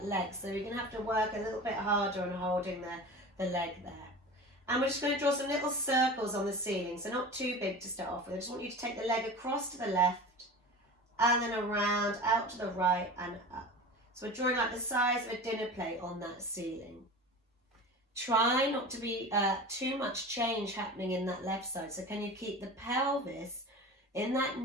leg, so you're going to have to work a little bit harder on holding the leg there. And we're just going to draw some little circles on the ceiling, so not too big to start off with. I just want you to take the leg across to the left and then around, out to the right and up. So we're drawing like the size of a dinner plate on that ceiling. Try not to be too much change happening in that left side. So can you keep the pelvis in that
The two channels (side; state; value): both; normal; correlation 0.34